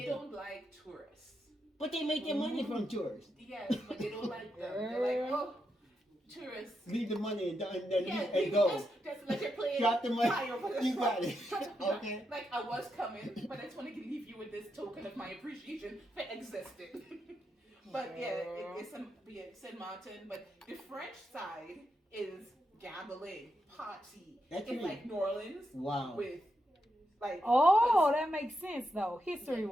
don't like tourists. But they make their money from tourists. Yes, but they don't like them. They're like, oh, tourists. Leave the money and Yeah, go. Just like you're playing. Drop the money. You got it. Okay. Like I was coming, but I just want to leave you with this token of my appreciation for existing. But yeah, it's Saint Martin. But the French side is gambling, party. It's like New Orleans. Wow. With like. Oh, that makes sense though,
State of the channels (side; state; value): both; normal; correlation 0.84